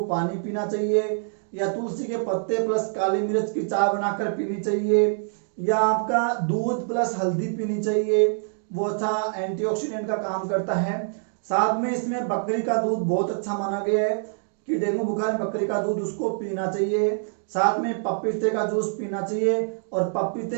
पानी पीना चाहिए, या तुलसी के पत्ते प्लस काली मिर्च की चाय बनाकर पीनी चाहिए, या आपका दूध प्लस हल्दी पीनी चाहिए, वो अच्छा एंटीऑक्सीडेंट का काम करता है। साथ में इसमें बकरी का दूध बहुत अच्छा माना गया है कि डेंगू बुखार में बकरी का दूध उसको पीना चाहिए। साथ में पपीते का जूस पीना चाहिए। और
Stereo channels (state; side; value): silent; left; digital silence